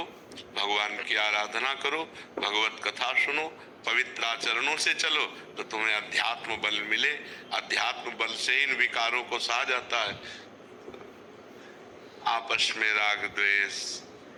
भगवान की आराधना करो, भगवत कथा सुनो, पवित्र आचरणों से चलो तो तुम्हें अध्यात्म बल मिले। अध्यात्म बल से इन विकारों को सहा जाता है। आपस में राग द्वेष,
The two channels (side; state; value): both; identical; correlation 1.00